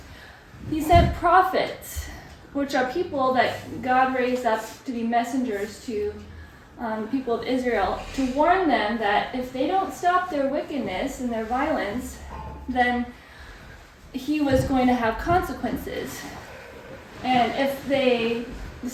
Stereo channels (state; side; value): identical; both; correlation 1.00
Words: He sent prophets, which are people that God raised up to be messengers to people of Israel, to warn them that if they don't stop their wickedness and their violence, then he was going to have consequences. And if they